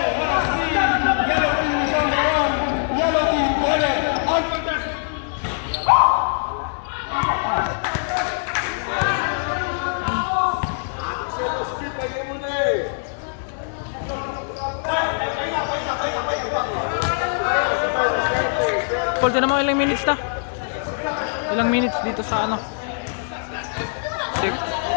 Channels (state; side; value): silent; right; digital silence